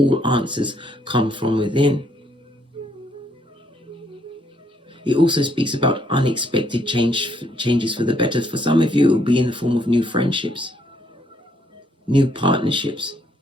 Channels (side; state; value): both; normal; correlation 0.70